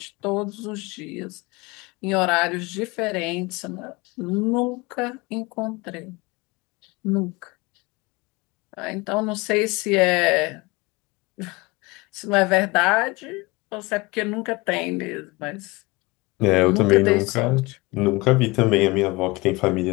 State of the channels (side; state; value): right; quieter; 23.9 dB